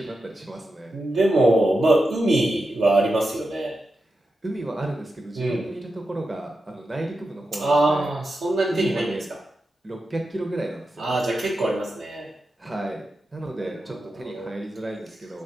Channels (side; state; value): both; normal; correlation 0.89